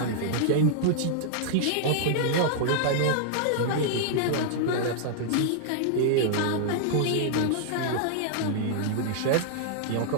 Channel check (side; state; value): both; different; correlation -0.01